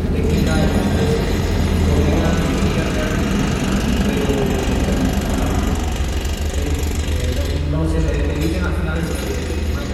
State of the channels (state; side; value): identical; both; correlation 1.00